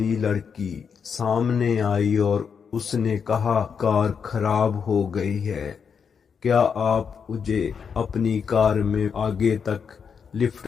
लड़की सामने आई और उसने कहा, कार खराब हो गई है, क्या आप मुझे अपनी कार में आगे तक लिफ्ट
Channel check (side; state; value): right; quieter; 6.5 dB